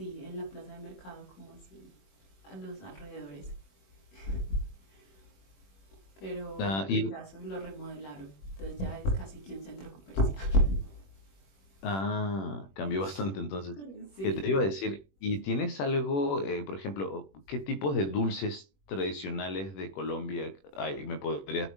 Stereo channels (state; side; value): late; right; 21 ms